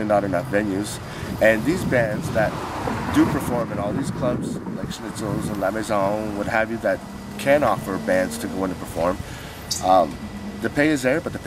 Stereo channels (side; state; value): both; identical; correlation 1.00